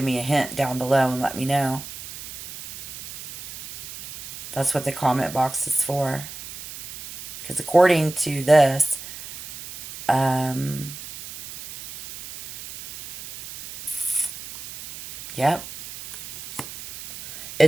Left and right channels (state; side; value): noise; right; hiss, 13 dB below the sound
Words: me a hint down below and let me know. That's what the comment box is for. Because according to this, yep.